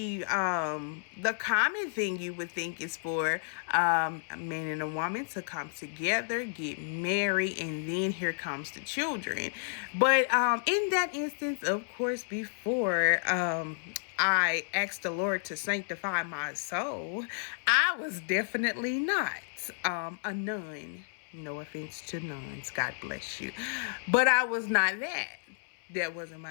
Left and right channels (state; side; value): silent; right; 57 dB below the other